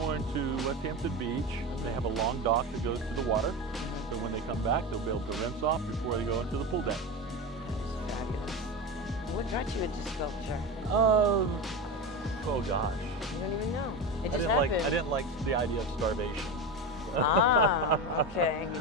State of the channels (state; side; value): normal; both; correlation 0.22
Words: to West Hampton Beach. They have a long dock that goes to the water. So when they come back, they'll be able to rinse off before they go into the pool deck. That is fabulous. What got you into sculpture? Oh gosh. You don't even know. It I just didn't happened. like the idea of starvation. Ah, okay.